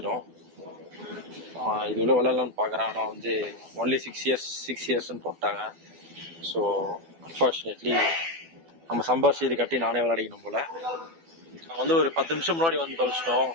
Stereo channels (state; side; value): late; left; 12 ms